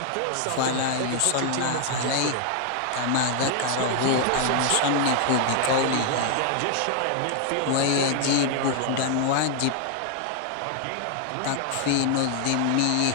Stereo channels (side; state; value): both; different; correlation 0.00